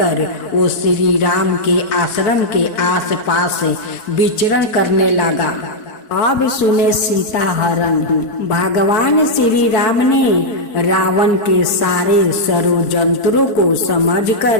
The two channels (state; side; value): late; right; 4.6 ms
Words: वो श्री राम के आश्रम के आसपास विचरण करने लगा। अब सुने सीता हरण। भगवान श्री राम ने रावण के सारे षड्यंत्रों को